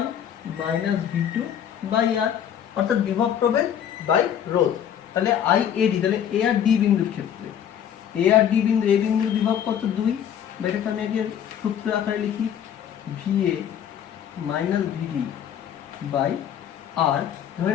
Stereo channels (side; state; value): right; quieter; 9.3 dB